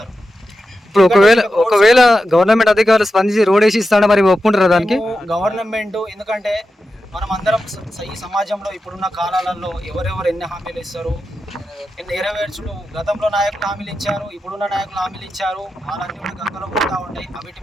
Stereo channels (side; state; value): both; normal; correlation 0.90